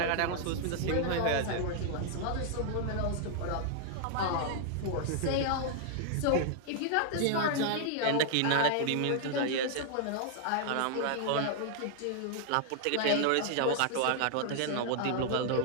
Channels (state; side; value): different; both; correlation 0.00